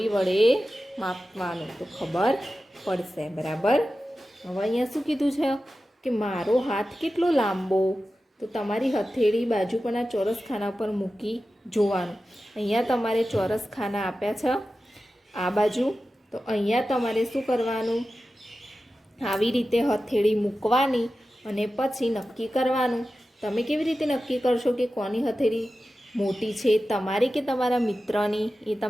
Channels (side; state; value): both; normal; correlation 0.94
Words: વડે માપવાનું તો ખબર પડશે. બરાબર. હવે અહીંયા શું કીધું છે કે મારો હાથ કેટલો લાંબો? તો તમારી હથેળી બાજુ પરના ચોરસ ખાના પર મૂકી જોવાનું. અહીંયા તમારે ચોરસ ખાના આપ્યા છે આ બાજુ. તો અહીંયા તમારે શું કરવાનું? આવી રીતે હથેળી મૂકવાની અને પછી નક્કી કરવાનું. તમે કેવી રીતે નક્કી કરશો કે કોની હથેળી મોટી છે, તમારી કે તમારા મિત્રની? એ